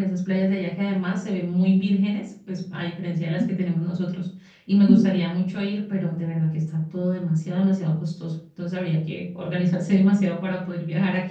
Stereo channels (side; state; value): both; identical; correlation 1.00